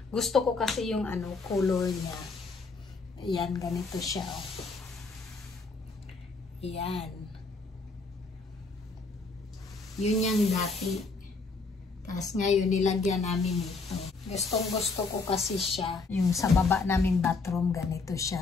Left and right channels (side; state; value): right; quieter; 4.0 dB